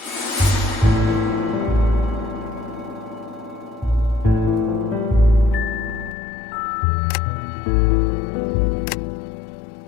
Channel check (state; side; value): drops out; right; at 6.2 s